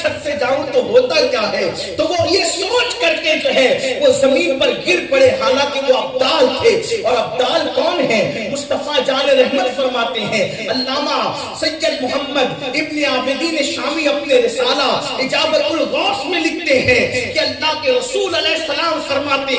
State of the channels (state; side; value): identical; both; correlation 1.00